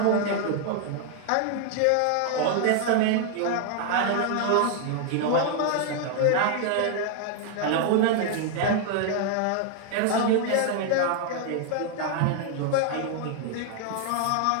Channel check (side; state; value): both; different; correlation 0.00